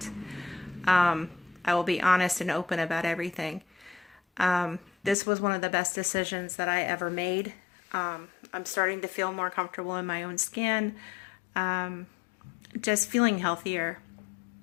I will be honest and open about everything. This was one of the best decisions that I ever made. I'm starting to feel more comfortable in my own skin, just feeling healthier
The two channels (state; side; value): drops out; right; at 5.2 s